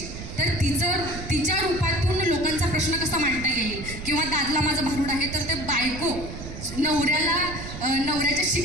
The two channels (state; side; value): noise; right; rumble, 10 dB below the sound